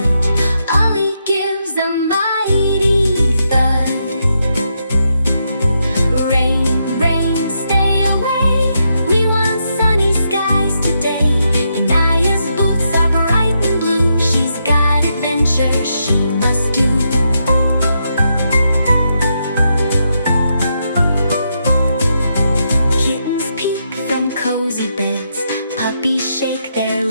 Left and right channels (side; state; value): both; inverted; correlation -0.81